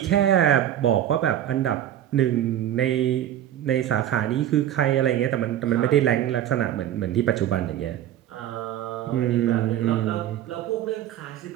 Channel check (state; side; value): quieter; left; 11.4 dB